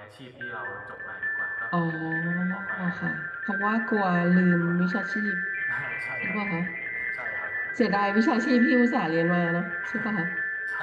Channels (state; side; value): identical; both; correlation 1.00